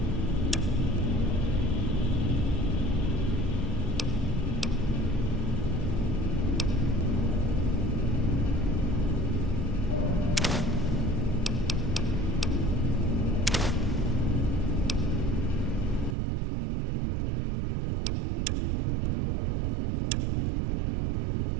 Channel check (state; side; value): drops out; left; at 16.2 s